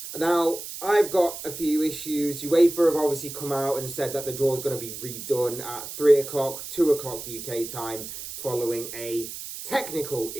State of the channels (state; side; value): noise; right; hiss, 9 dB below the sound